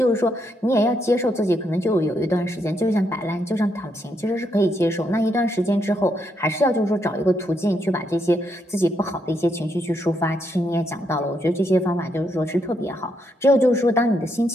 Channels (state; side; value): normal; both; correlation 0.78